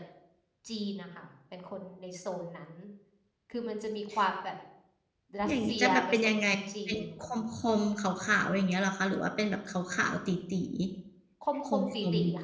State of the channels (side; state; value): both; identical; correlation 1.00